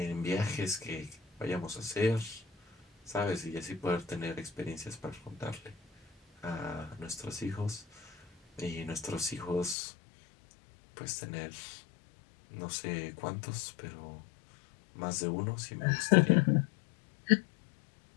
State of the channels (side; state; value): right; drops out; at 9.8 s